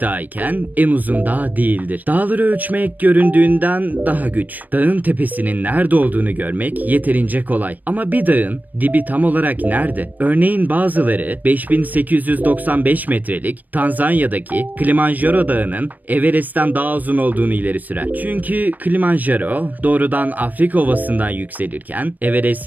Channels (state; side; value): late; left; 0.084 ms